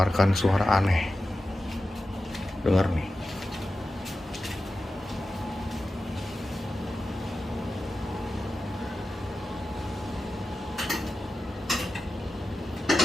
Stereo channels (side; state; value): both; normal; correlation 0.93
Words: suara aneh. Dengar nih.